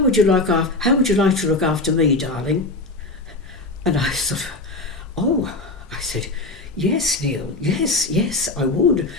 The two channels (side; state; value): right; quieter; 3.0 dB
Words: you like to look after me, darling?" And I sort of, I said, "Yes, Neil, yes, I would."